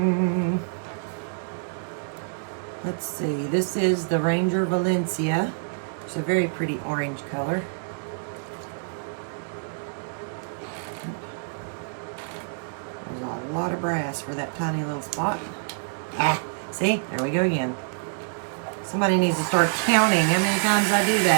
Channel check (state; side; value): silent; left; 61 dB below the other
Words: Let's see. This is the Ranger Valencia. It's a very pretty orange color. There's a lot of brass for that tiny little spot. Ah, see? There we go again. Somebody needs to start counting how many times I do